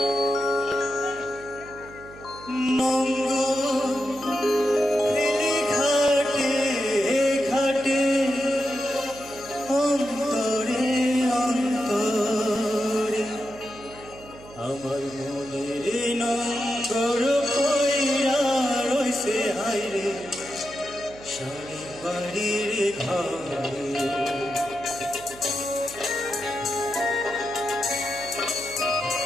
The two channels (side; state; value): right; noise; hum, 19 dB below the sound